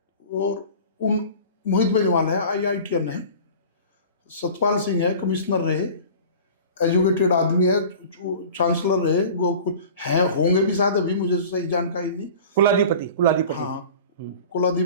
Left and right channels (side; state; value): both; inverted; correlation -0.41